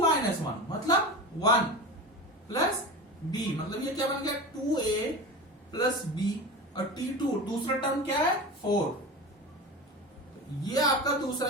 minus 1 मतलब 1 प्लस b, मतलब ये क्या बन गया 2a प्लस b, और t2 दूसरा टर्म क्या है 4, ये आपका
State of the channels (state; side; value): normal; both; correlation 0.29